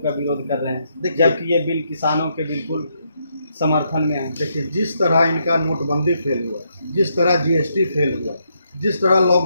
विरोध कर रहे हैं, जबकि ये बिल किसानों के बिल्कुल समर्थन में है। देखिए, जिस तरह इनका नोटबंदी फेल हुआ, जिस तरह जीएसटी फेल हुआ, जिस तरह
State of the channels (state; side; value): inverted; both; correlation -0.77